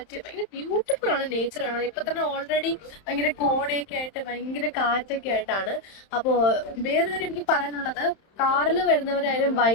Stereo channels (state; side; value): late; right; 31 ms